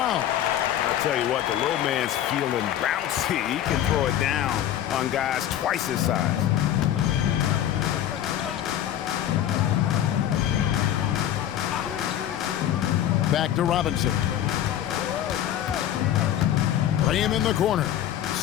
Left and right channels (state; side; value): quieter; right; 11.3 dB